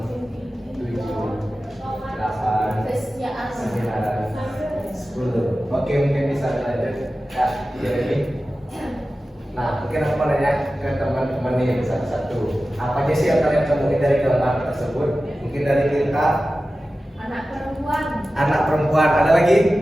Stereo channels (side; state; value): both; normal; correlation 0.95